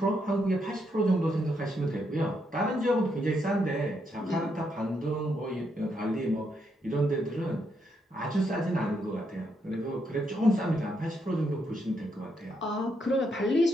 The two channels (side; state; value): both; normal; correlation 0.78